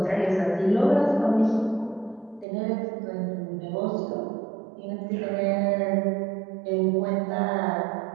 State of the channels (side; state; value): left; drops out; at 2.5 s